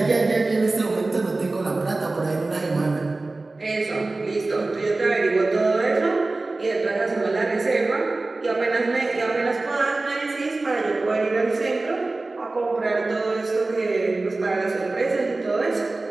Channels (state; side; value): quieter; left; 3.2 dB